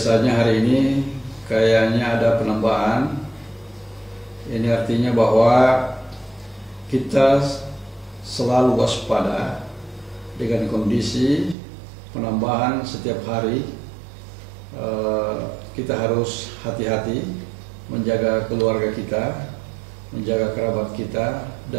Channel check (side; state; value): left; drops out; at 11.6 s